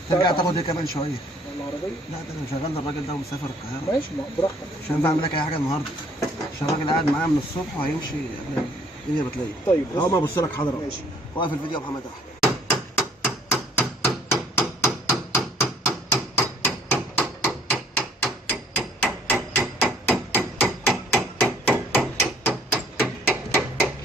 ترجع تاخد ايه كمان شويه؟ العربيه؟ لا ده انا شغال الراجل ده ومسافر القاهره. ماشي براحتك. مش هينفع اعمل لك اي حاجه النهارده عشان الراجل قاعد معايا من الصبح وهيمشي قبل الدنيا بتلاقي. طيب اهو ما ابص لك حاضر اهو. ماشي. واقف الفيديو يا محمد احمد.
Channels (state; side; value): normal; both; correlation 0.58